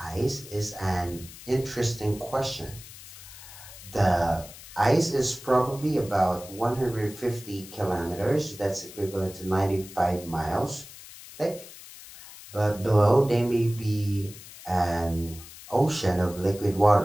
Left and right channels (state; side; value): noise; left; hiss, 16 dB below the sound